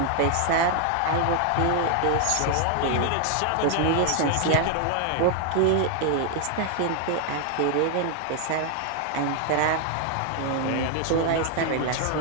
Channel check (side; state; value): both; different; correlation 0.00